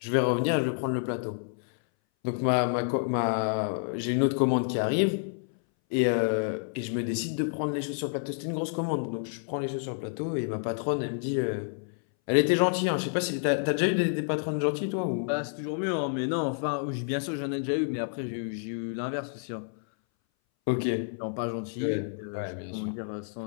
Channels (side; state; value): right; silent; 59 dB below the other